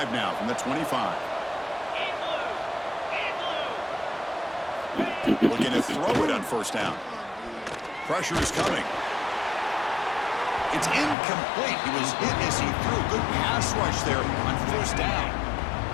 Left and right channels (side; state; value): right; drops out; at 11.2 s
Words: now from the 25. Looking to throw it on first down. Pressure is coming. It's incomplete. He was hit as he threw. Good pass rush there on first down.